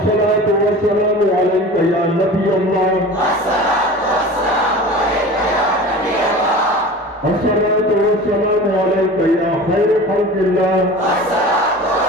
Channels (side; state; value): both; normal; correlation 0.37